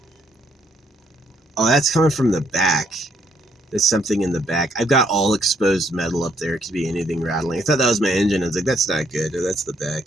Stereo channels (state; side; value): normal; both; correlation 0.70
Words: Oh, that's coming from the back. There's something in the back. I've got all exposed metal up there. It could be anything rattling. I thought that was my engine. I was like, that's not good. Oh, that's the back.